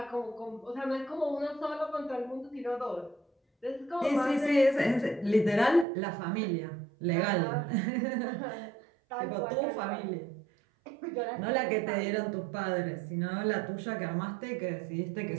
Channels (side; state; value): left; drops out; at 5.9 s